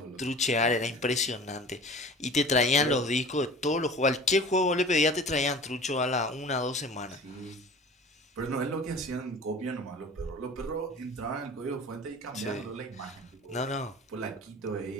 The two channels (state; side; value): normal; both; correlation 0.41